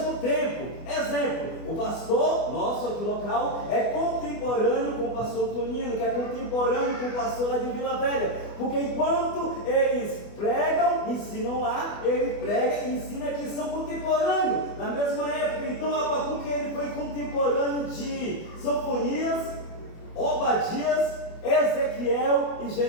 tempo. Exemplo, o pastor nosso aqui local é contemporâneo com o pastor Tonino, que é contemporâneo com o pastor lá de Vila Velha, porque enquanto eles pregam, ensinam lá, ele prega e ensina que são contemporâneos, na mesma época. Então Abacuque ele foi contemporâneo de Sofonias, Obadias, Ezequiel e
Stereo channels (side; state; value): right; late; 24 ms